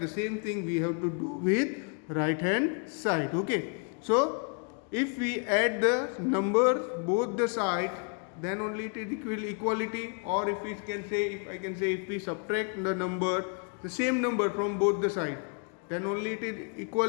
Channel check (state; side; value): quieter; right; 39.4 dB